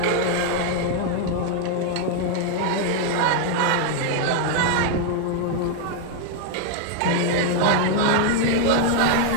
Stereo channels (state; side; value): different; both; correlation 0.00